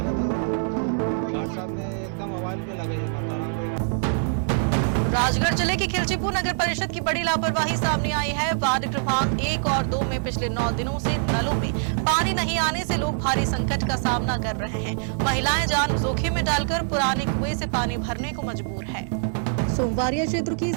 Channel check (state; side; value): silent; left; 62 dB below the other